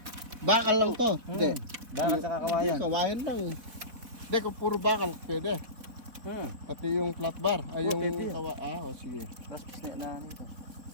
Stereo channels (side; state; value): left; late; 4.0 ms